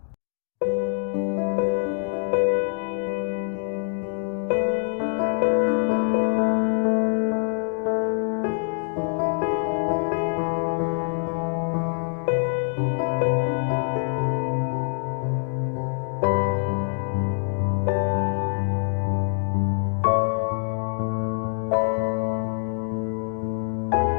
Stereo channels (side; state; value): right; silent; 62 dB below the other